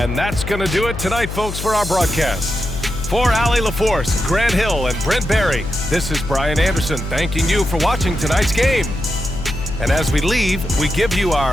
that's going to do it tonight, folks, for our broadcast. For Allie LaForce, Grant Hill, and Brent Barry, this is Brian Anderson thanking you for watching tonight's game. And as we leave, we give you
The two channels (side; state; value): left; noise; hum, 7 dB below the sound